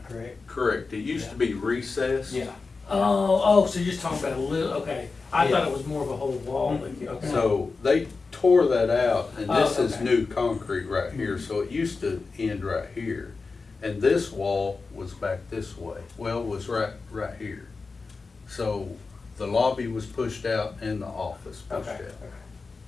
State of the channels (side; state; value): right; quieter; 4.3 dB